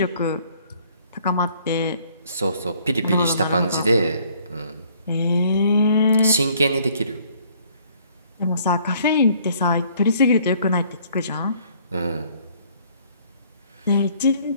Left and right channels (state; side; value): inverted; both; correlation -0.60